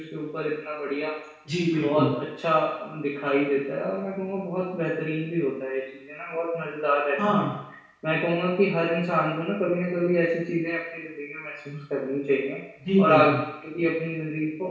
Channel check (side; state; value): both; identical; correlation 1.00